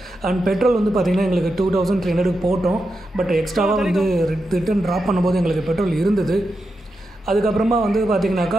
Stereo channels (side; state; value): both; normal; correlation 0.88